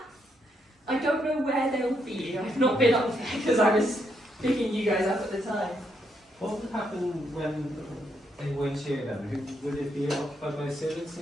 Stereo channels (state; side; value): normal; both; correlation 0.77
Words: I don't know where they'll be. I've not been up there because I was picking you guys up at the time. What would happen when they weren't here then? Would it be occupied by servants?